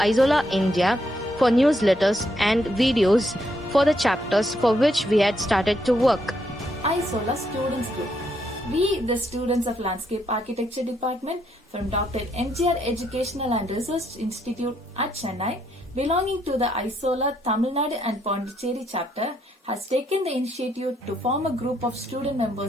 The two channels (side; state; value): both; normal; correlation 0.75